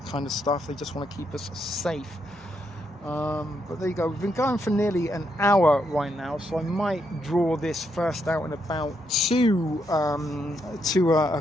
kind of stuff. They just want to keep us safe. But there you go. We've been going for nearly an hour right now, so I might draw this first out and about to a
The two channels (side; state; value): both; normal; correlation 0.78